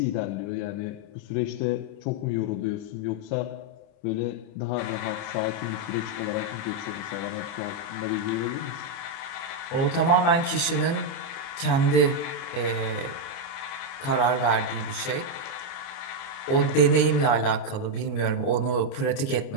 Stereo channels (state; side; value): late; right; 29 ms